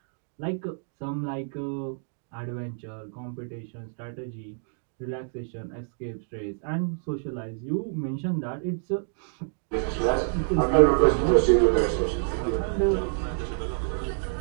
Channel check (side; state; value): left; silent; digital silence